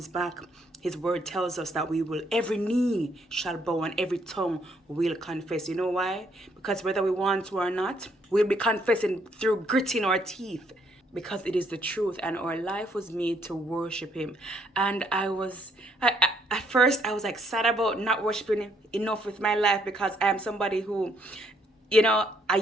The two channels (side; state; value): both; normal; correlation 0.70